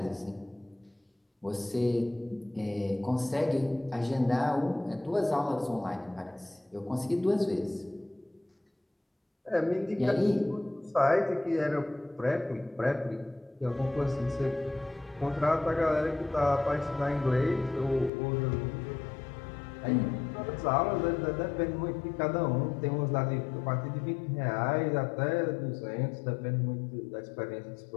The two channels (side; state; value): right; drops out; at 18.1 s